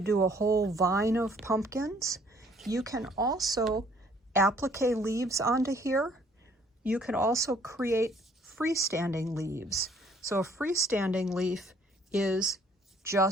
do a whole vine of pumpkins. You can also applique leaves onto here. You can also create freestanding leaves. So a freestanding leaf is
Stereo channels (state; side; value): normal; both; correlation 0.61